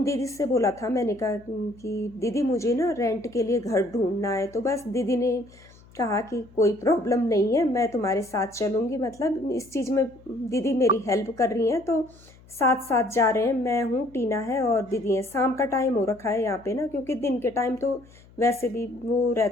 दीदी से बोला था मैंने, कहा कि दीदी मुझे ना रेंट के लिए घर ढूंढना है। तो बस दीदी ने कहा कि कोई प्रॉब्लम नहीं है, मैं तुम्हारे साथ चलूँगी। मतलब इस चीज़ में दीदी मेरी हेल्प कर रही हैं, तो साथ साथ जा रहे हैं। मैं हूँ, टीना है और दीदी है। शाम का टाइम हो रखा है यहाँ पे ना, क्योंकि दिन के टाइम तो वैसे भी वो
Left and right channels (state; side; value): noise; left; hum, 25 dB below the sound